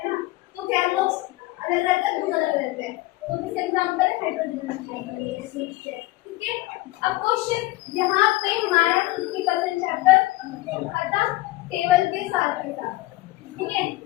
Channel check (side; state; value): right; quieter; 18.9 dB